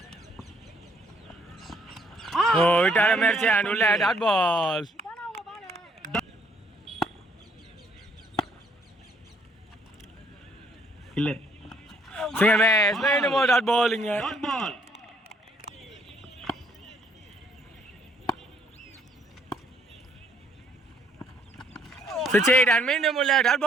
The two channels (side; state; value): both; normal; correlation 0.66